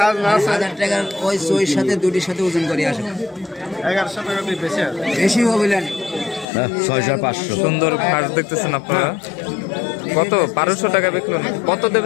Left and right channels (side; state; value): right; drops out; at 6.5 s